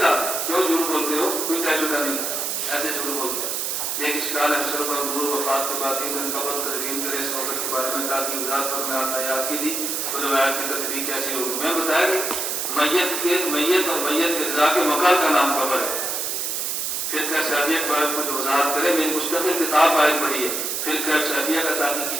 کیوں جھوٹ بولتے ہو؟ کوئی تجربہ نہیں تھا، ایسے جھوٹ بولتے ہیں۔ ایک اشکال ہے سر پر نور وفات کے بعد 3 دن قبل تدوین کرے اس وقت کے بارے میں تاکہ وضاحت پر میں آپ یاد کی تھی تو روایت کی تدبیر کیسی ہوگی؟ میں بتایا کہ میت اور میت کے رضا کے مقر کا نام قبر ہے۔ پھر کہ صحابیہ کے بارے میں کچھ وضاحت کرے، میں مستقل کتاب باہر پڑھی ہے، پھر کہ صحابیہ کا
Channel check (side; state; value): right; noise; hiss, 1 dB below the sound